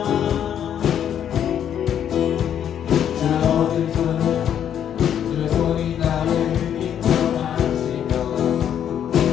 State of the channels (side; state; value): right; quieter; 9.4 dB